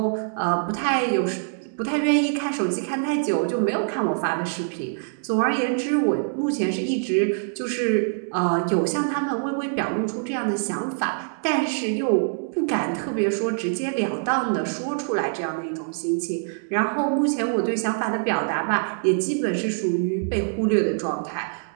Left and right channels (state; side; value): silent; left; digital silence